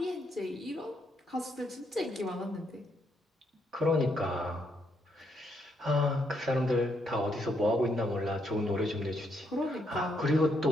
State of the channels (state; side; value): normal; both; correlation 0.76